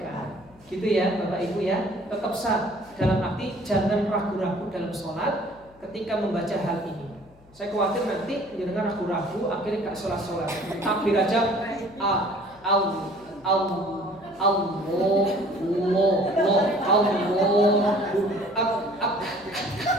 Gitu ya Bapak Ibu ya. Tetap sah. Dalam arti jangan ragu-ragu dalam sholat ketika membaca hal ini. Saya khawatir nanti jangan ragu-ragu akhirnya gak sholat-sholat. Takbir aja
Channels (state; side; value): noise; left; hum, 27 dB below the sound